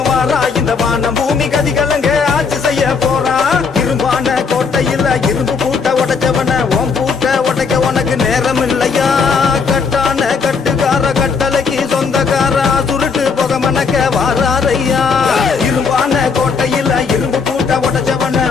வாரா இந்த வான பூமி கதிகலங்க ஆட்சி செய்ய போறா இரும்பான கோட்டையில் இரும்பு பூட்ட உடைச்சவன ஓம் பூட்ட உடைக்க உனக்கு நேரம் இல்லையா கட்டான கட்டுக்கார கட்டளைக்கு சொந்தக்காரா சுருட்டு புக மணக்க வாராரையா இரும்பான கோட்டையில் இரும்பு பூட்ட உடைச்சவன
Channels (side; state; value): right; quieter; 5.4 dB